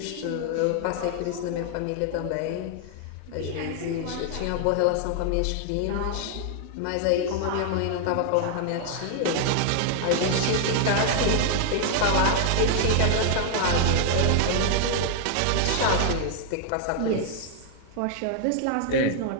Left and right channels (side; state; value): both; different; correlation 0.00